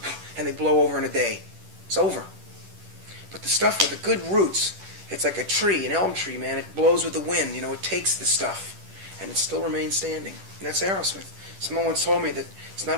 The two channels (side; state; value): left; late; 10 ms